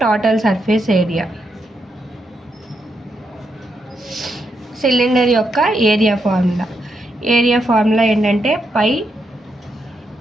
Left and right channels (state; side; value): normal; both; correlation 0.81